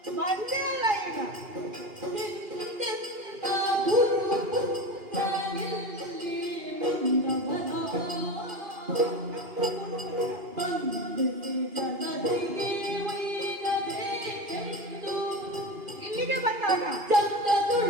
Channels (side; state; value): left; late; 2.4 ms